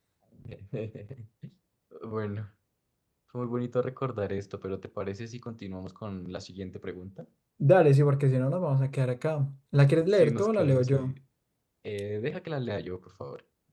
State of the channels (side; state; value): both; identical; correlation 1.00